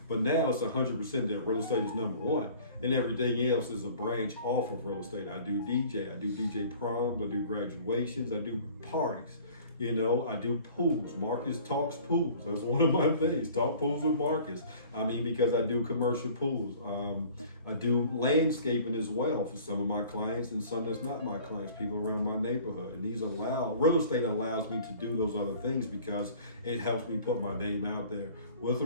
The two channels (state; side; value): inverted; both; correlation -0.48